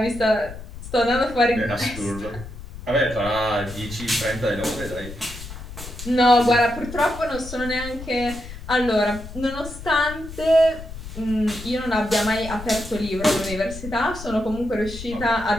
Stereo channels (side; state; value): left; noise; rumble, 12 dB below the sound